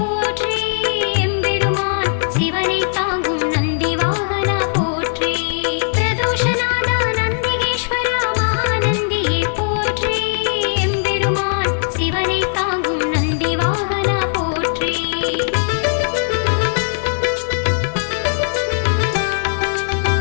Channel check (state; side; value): silent; right; 67 dB below the other